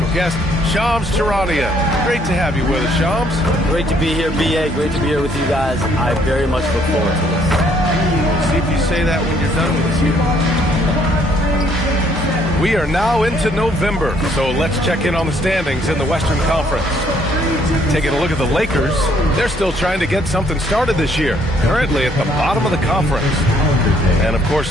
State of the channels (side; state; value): both; normal; correlation 0.66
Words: guest, Shams Charania. Great to have you with us, Shams. Great to be here, B.A. Great to be here with you guys. I very much look forward to this. See if you say that when you're done with us here. We are now into November, so let's check in on the standings in the Western Conference. Taking a look at the Lakers, they're still trying to get something started this year, currently at the bottom of the conference. And of course